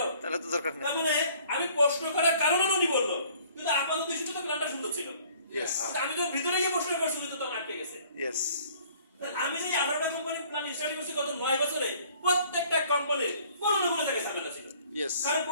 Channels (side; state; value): both; inverted; correlation -0.55